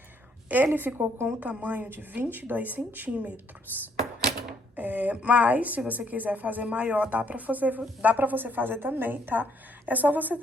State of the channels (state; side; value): normal; both; correlation 0.68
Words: Ele ficou com o tamanho de 22 centímetros. Mas, se você quiser fazer maior, dá pra você fazer também, tá? É só você